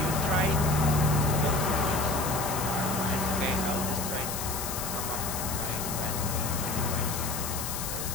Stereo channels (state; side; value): noise; left; hiss, 5 dB below the sound